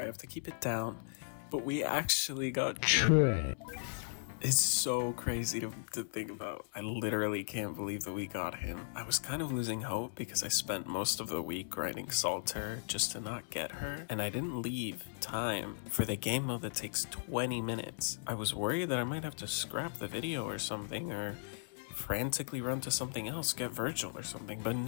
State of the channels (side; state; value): right; silent; digital silence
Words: have to keep it down, but we actually got Choi. It's so crazy to think about. I literally can't believe that we got him. I was kind of losing hope because I spent most of the week grinding Salter just to not get her, and I didn't leave time for the game mode that takes 20 minutes. I was worried that I might have to scrap the video or something, or frantically run to something else, get Virgil or something, but